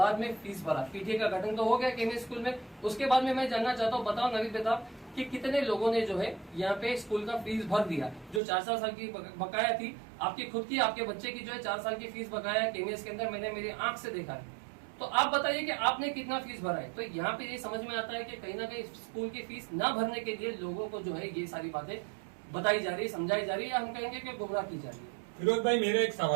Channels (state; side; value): drops out; left; at 8.4 s